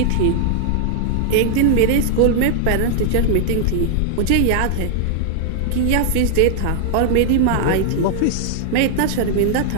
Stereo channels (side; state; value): both; different; correlation -0.01